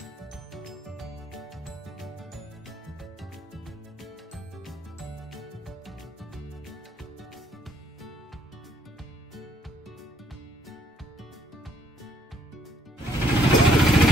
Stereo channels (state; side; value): normal; both; correlation 0.67